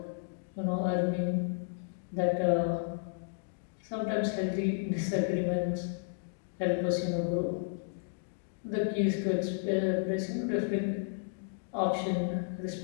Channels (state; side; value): silent; right; digital silence